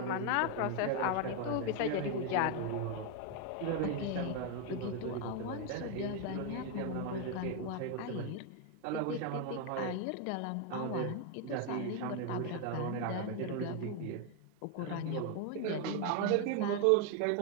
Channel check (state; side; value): different; both; correlation 0.01